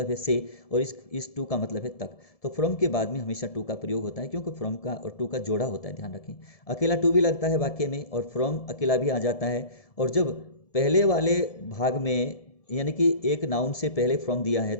है से, और इस टू का मतलब है तक। तो फ्रॉम के बाद में हमेशा टू का प्रयोग होता है, क्योंकि फ्रॉम का और टू का जोड़ा होता है, ध्यान रखें। अकेला टू भी लगता है वाक्य में, और फ्रॉम अकेला भी आ जाता है। और जब पहले वाले भाग में यानी कि एक नाउन से पहले फ्रॉम दिया है,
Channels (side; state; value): right; late; 1.7 ms